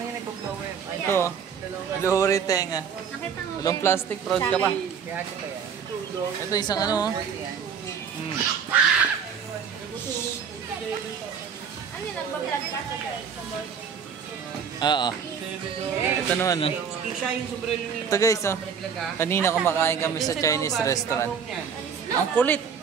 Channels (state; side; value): quieter; left; 7.0 dB